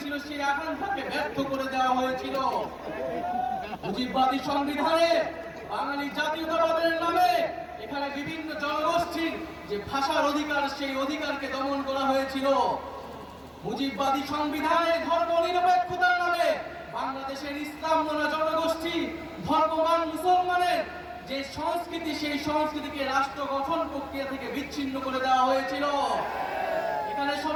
সেই আকাঙ্ক্ষাকে ব্যর্থ করে দেওয়া হয়েছিল। মুজিববাদী সংবিধানে বাঙালি জাতীয়তাবাদের নামে এখানে বিভিন্ন জনগোষ্ঠীর যে ভাষার অধিকার, সেই অধিকারকে দমন করা হয়েছিল। মুজিববাদী সংবিধানে ধর্ম নিরপেক্ষতার নামে বাংলাদেশের ইসলাম মনা জনগোষ্ঠী, ধর্মবান মুসলমানের যে সংস্কৃতি, সেই সংস্কৃতিকে রাষ্ট্র গঠন প্রক্রিয়া থেকে বিচ্ছিন্ন করে দেওয়া হয়েছিল। এখানে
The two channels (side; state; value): both; identical; correlation 1.00